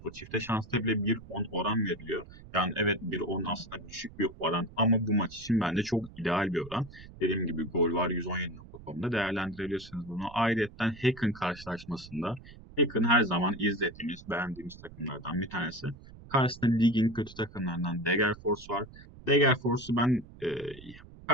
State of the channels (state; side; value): noise; right; rumble, 18 dB below the sound